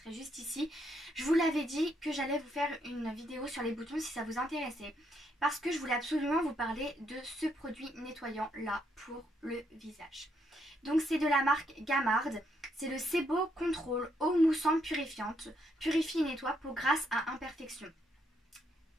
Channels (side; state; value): both; normal; correlation 0.75